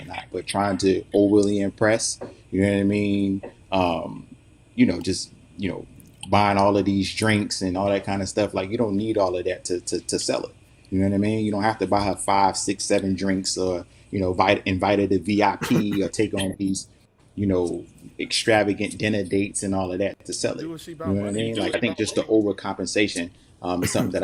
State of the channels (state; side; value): identical; both; correlation 1.00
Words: or not, but trying to overly impress, you know what I mean? Just, buying all of these drinks and all that kind of stuff. Like, you don't need all of that to sell it. You know what I mean? You don't have to buy her 5, 6, 7 drinks or, invite her to VIP or take on these, extravagant dinner dates and all of that to sell it. You know what I mean? Like, I think just the overcompensation is something that